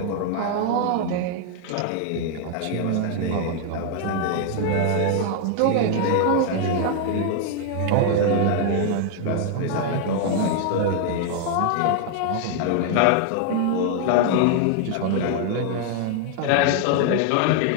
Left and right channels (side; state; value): both; different; correlation 0.00